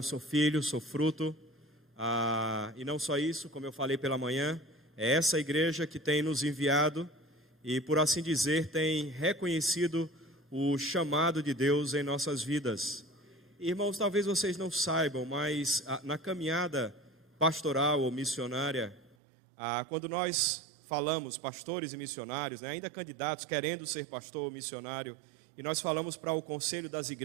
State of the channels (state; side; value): drops out; left; at 19.2 s